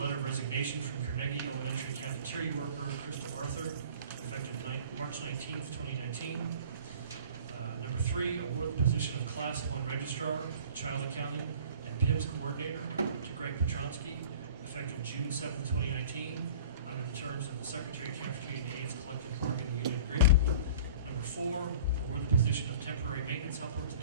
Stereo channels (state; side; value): inverted; both; correlation -0.44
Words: of resignation from Carnegie Elementary cafeteria worker Crystal Arthur, effective March 19th, 2019. Number 3, award the position of Class 1 Registrar, Child Accounting, and PIMS Coordinator to Greg Petronsky, effective June 7th, 2019, under the terms of the Secretary of Cafeteria and Aides Collective Bargaining Union Agreement. Number 4, award the position of Temporary Maintenance Helper to